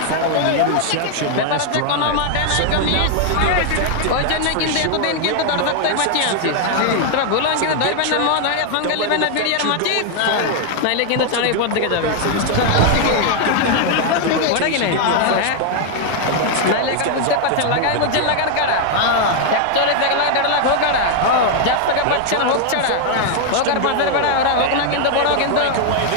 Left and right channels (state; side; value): different; both; correlation 0.00